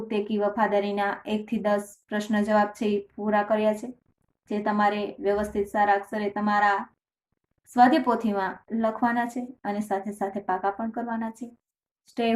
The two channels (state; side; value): identical; both; correlation 1.00